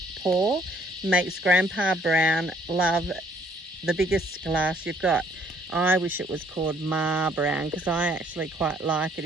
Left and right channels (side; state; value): both; normal; correlation 0.64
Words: pour makes Grandpa Brown love the biggest glass you've got. I wish it was called Ma Brown because I actually quite like it.